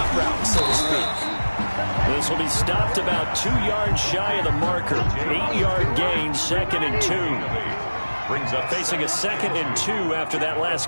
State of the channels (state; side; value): inverted; both; correlation -1.00